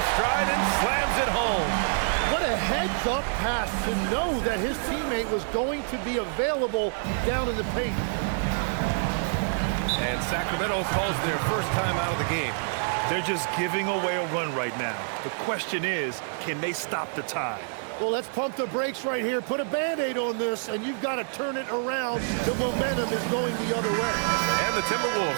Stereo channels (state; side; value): silent; left; 60 dB below the other